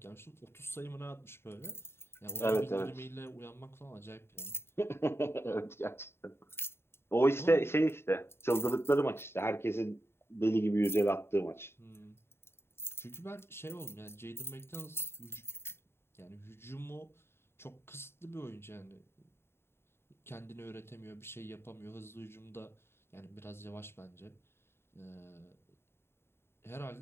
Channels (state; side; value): late; right; 0.12 ms